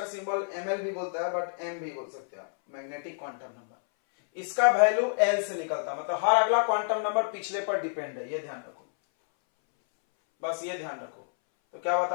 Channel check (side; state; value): right; silent; 59 dB below the other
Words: सिंबल ml भी बोलता है, बट m भी बोल सकते हैं आप। मैग्नेटिक क्वांटम नंबर, इसका वैल्यू l से निकलता है, मतलब हर अगला क्वांटम नंबर पिछले पर डिपेंड है, ये ध्यान रखो, बस ये ध्यान रखो। तो क्या